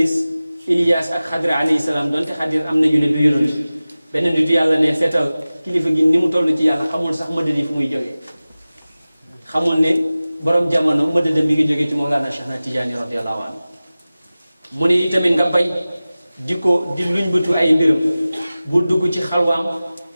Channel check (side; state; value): both; inverted; correlation -0.97